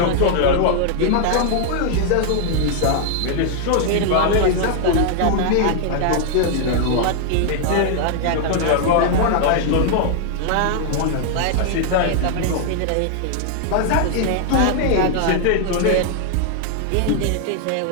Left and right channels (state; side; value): different; both; correlation 0.00